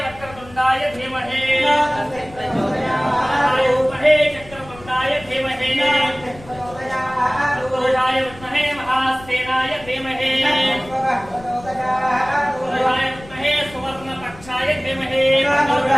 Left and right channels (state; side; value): noise; left; rumble, 19 dB below the sound